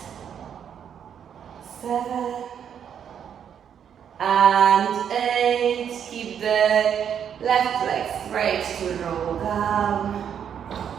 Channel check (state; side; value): quieter; left; 8.4 dB